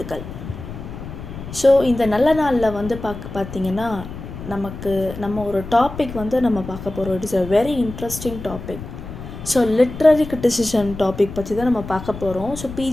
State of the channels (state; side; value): noise; left; rumble, 11 dB below the sound